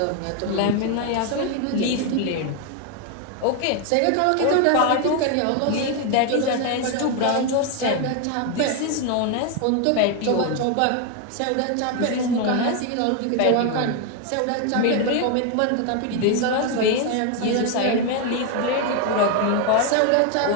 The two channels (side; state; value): both; different; correlation 0.01